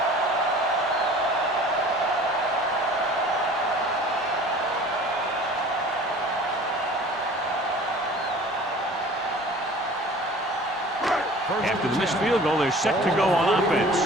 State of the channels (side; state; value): both; normal; correlation 0.46